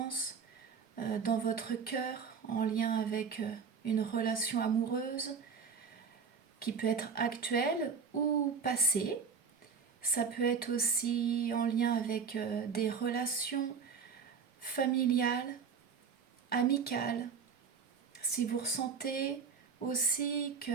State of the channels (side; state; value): left; quieter; 5.9 dB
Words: dans votre cœur en lien avec une relation amoureuse qui peut être actuelle ou passée. Ça peut être aussi en lien avec des relations familiales, amicales. Si vous ressentez aussi